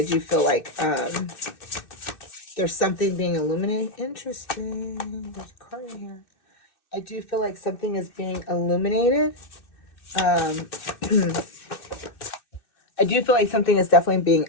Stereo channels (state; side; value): late; right; 2.6 ms